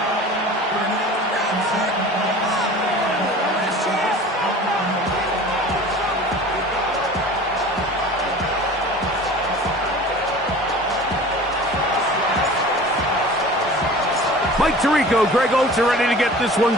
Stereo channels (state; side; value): normal; both; correlation 0.41